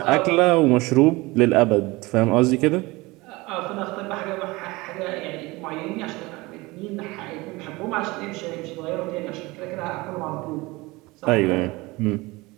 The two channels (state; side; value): quieter; left; 22.3 dB